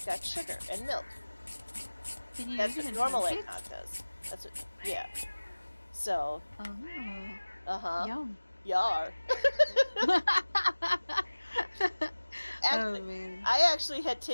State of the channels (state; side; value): inverted; both; correlation -1.00